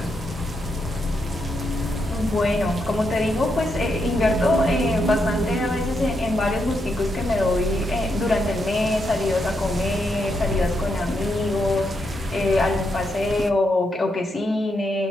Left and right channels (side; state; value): both; normal; correlation 0.81